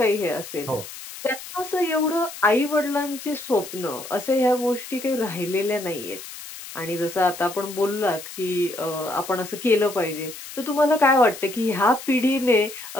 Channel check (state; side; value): noise; left; hiss, 13 dB below the sound